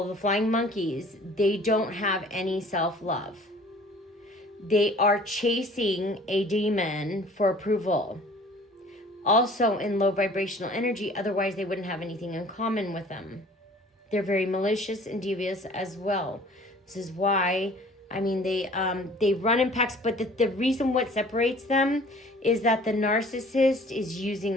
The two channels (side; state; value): both; normal; correlation 0.50